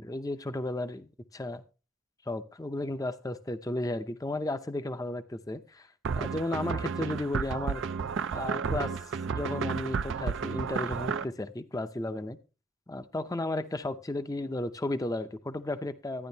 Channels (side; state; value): both; normal; correlation 0.66